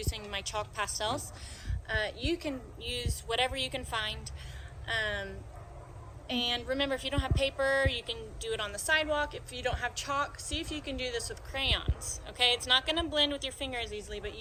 my chalk pastels. You can use whatever you can find. And remember, if you don't have paper, you can do it on the sidewalk. If you don't have chalk, see if you can do this with crayons, okay? It's not gonna blend with your fingers easily, but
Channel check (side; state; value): both; identical; correlation 1.00